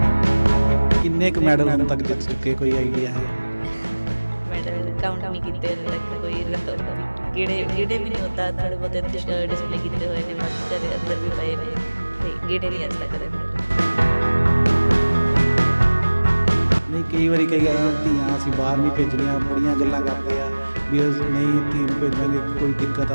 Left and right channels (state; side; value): inverted; both; correlation -1.00